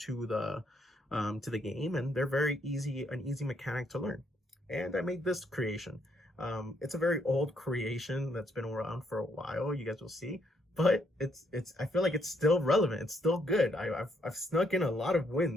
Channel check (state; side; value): normal; both; correlation 0.73